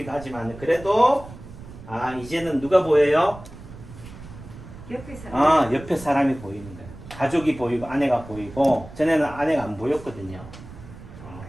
하지만 그래도 아 이제는 누가 보여요? 옆에 사람. 옆에 사람이 보이는 거예요. 가족이 보이고 아내가 보이고 전에는 아내가 안 보였거든요.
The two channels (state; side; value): noise; right; rumble, 16 dB below the sound